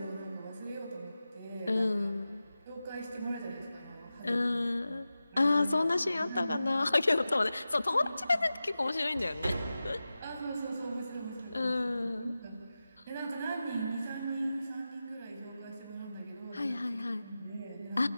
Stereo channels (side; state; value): both; inverted; correlation -0.94